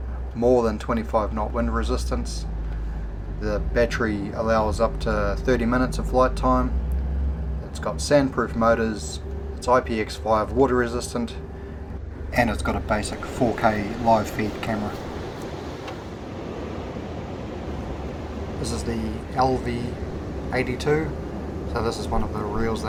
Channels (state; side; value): identical; both; correlation 1.00